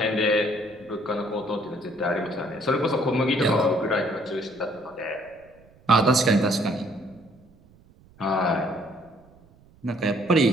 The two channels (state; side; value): noise; right; rumble, 28 dB below the sound